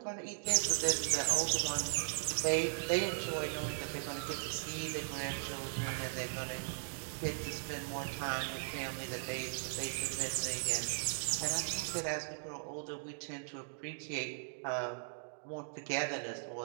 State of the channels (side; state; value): left; silent; digital silence